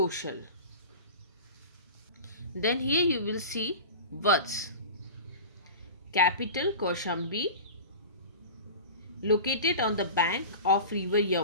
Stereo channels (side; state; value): both; inverted; correlation -0.33